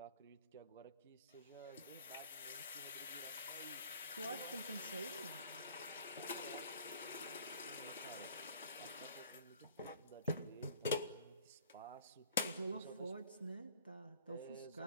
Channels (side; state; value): both; inverted; correlation -0.52